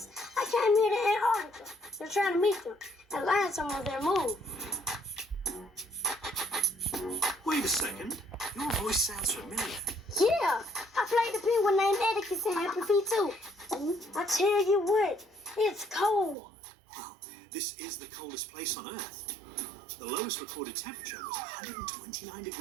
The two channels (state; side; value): drops out; left; at 16.4 s